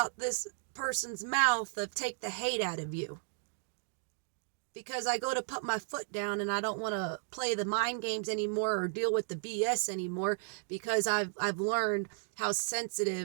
this person's mouth of take the hate out of you. Because I go to put my foot down and I don't want to play the mind games anymore or deal with the BS anymore, because I've learned how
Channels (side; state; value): left; silent; digital silence